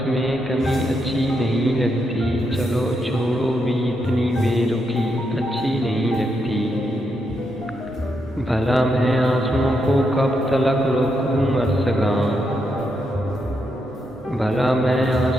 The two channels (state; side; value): normal; both; correlation 0.81